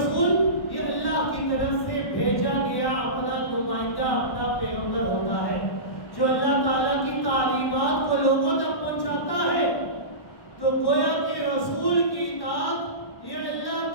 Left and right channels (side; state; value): right; late; 1.2 ms